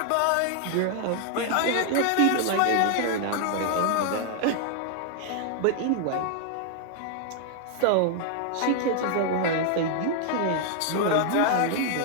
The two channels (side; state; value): both; different; correlation 0.00